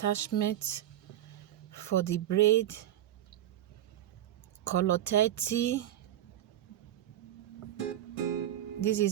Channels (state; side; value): quieter; left; 12.4 dB